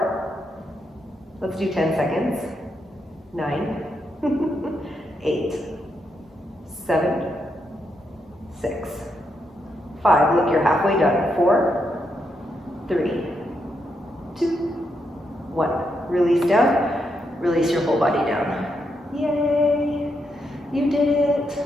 Let's do 10 seconds. 9, 8, 7, 6, 5. Look, you're halfway done. 4, 3, 2, 1. Release down. Release your whole body down. Yay! You did it.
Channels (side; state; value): both; normal; correlation 0.81